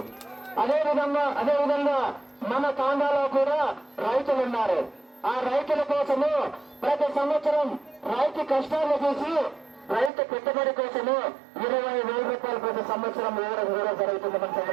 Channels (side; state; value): left; drops out; at 10.1 s